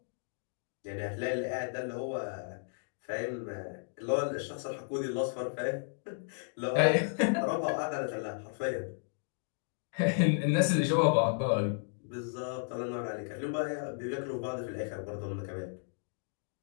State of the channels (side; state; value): right; silent; digital silence